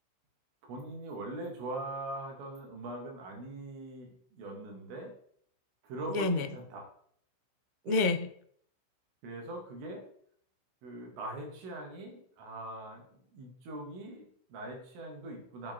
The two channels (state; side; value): late; left; 16 ms